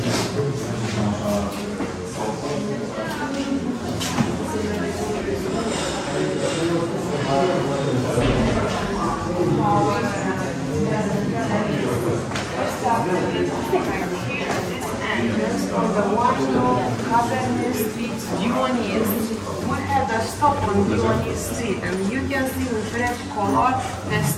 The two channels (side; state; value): both; identical; correlation 1.00